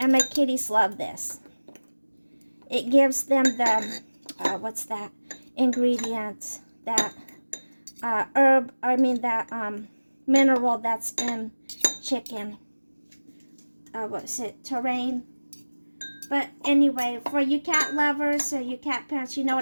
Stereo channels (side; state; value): both; inverted; correlation -1.00